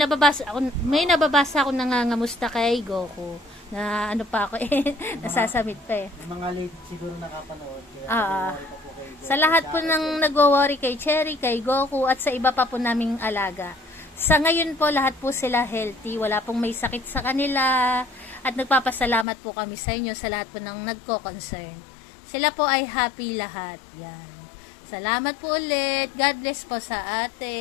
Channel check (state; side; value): drops out; right; at 19.2 s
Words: nababasa ako nangangamusta kay Goku. Na ano pa ako eh. Nasasamit pa eh. Yung mga late siguro nakapanood. Kaya nag-worry pa po kay Goku. Sa lahat po ng nagwo-worry kay Cherry, kay Goku, at sa iba pa po naming alaga. Sa ngayon po, lahat po sila healthy. Wala pong may sakit sa kanila. At nagpapasalamat po kami sa inyo sa lahat po ng nagko-concern. Sila po ay happy lahat. Yan. Salamat po ulit. God bless po sa